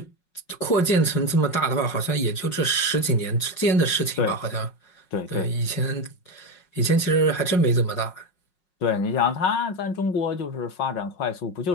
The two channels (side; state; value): right; late; 5.5 ms